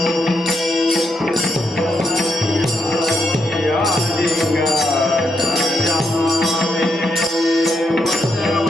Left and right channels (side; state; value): both; normal; correlation 0.80